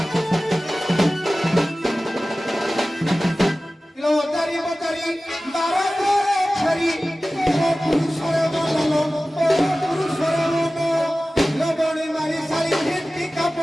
लबड़ी मारी सारी हिंदी का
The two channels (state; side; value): normal; both; correlation 0.96